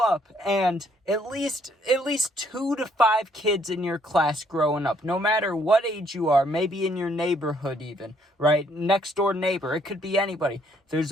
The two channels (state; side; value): normal; both; correlation 0.67